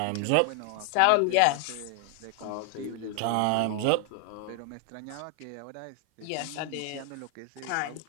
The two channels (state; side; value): different; both; correlation 0.00